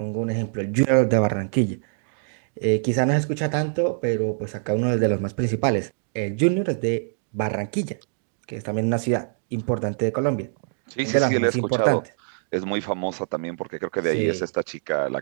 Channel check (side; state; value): left; silent; digital silence